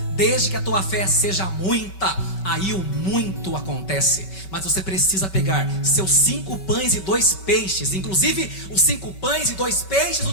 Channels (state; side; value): late; right; 5.3 ms